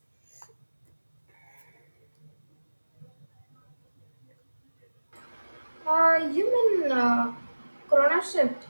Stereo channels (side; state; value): both; inverted; correlation -1.00